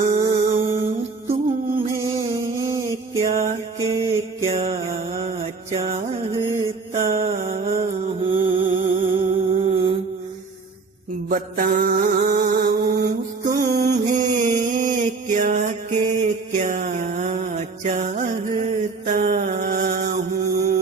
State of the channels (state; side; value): quieter; left; 4.3 dB